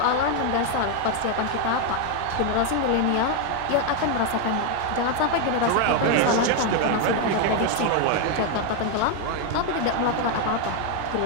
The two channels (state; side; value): different; both; correlation 0.01